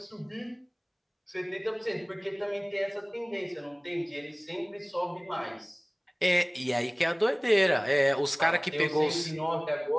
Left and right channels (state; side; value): identical; both; correlation 1.00